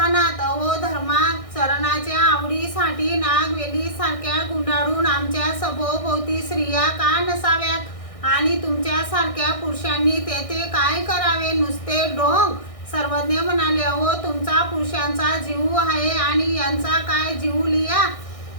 अहो धर्माचरणाच्या आवडीसाठी नागवेली सारख्या गुंडाळून आमच्या सभोवती स्त्रिया का नसाव्यात, आणि तुमच्यासारख्या पुरुषांनी तेथे काय करावे, नुसते ढोंग। सर्वज्ञ म्हणाले, अहो तुमचा पुरुषांचा जीव आहे आणि यांचा काय जीव लिया।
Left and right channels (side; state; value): right; late; 1.6 ms